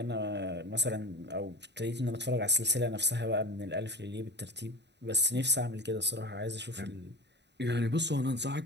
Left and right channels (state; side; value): late; left; 0.50 ms